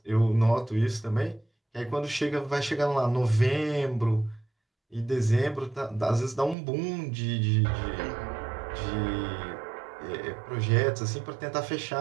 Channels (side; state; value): left; drops out; at 6.6 s